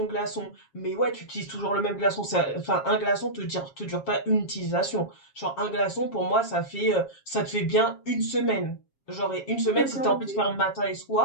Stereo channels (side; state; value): right; late; 7.3 ms